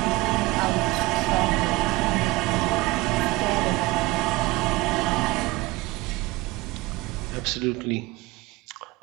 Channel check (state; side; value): quieter; left; 20.8 dB